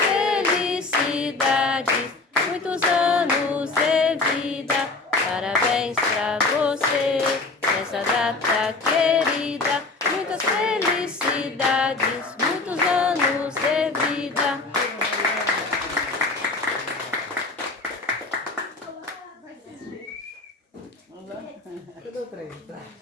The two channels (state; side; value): quieter; right; 3.7 dB